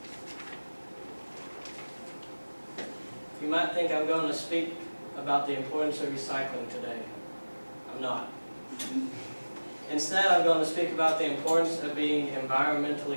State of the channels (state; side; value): inverted; both; correlation -1.00